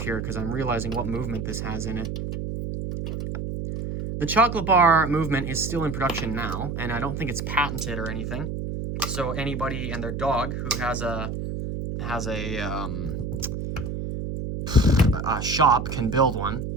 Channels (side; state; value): right; noise; hum, 4 dB below the sound